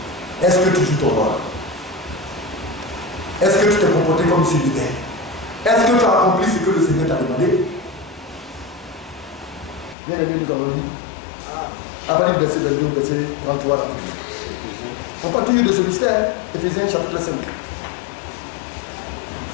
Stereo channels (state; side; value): drops out; right; at 10.0 s